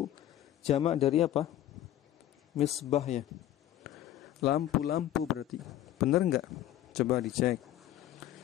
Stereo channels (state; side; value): quieter; right; 12.7 dB